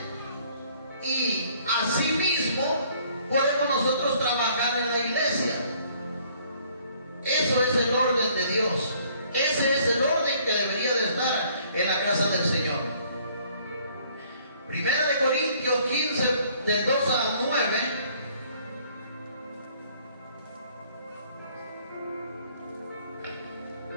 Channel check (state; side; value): inverted; both; correlation -0.61